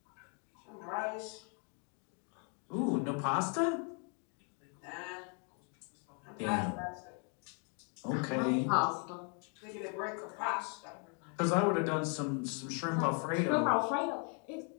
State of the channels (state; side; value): quieter; right; 39.3 dB